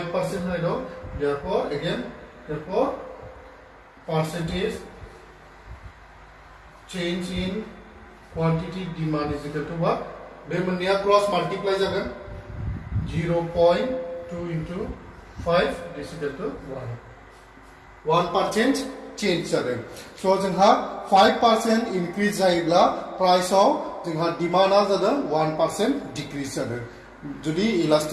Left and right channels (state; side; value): identical; both; correlation 1.00